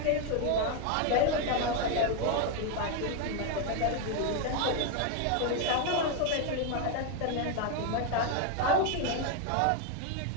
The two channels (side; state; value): both; different; correlation 0.01